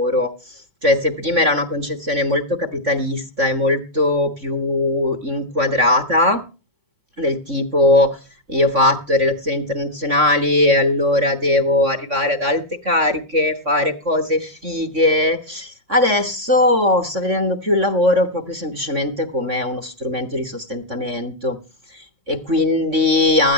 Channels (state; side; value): late; left; 3.6 ms